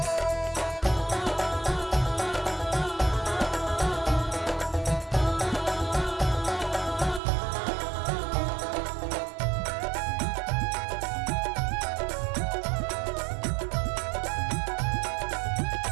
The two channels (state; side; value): drops out; left; at 7.2 s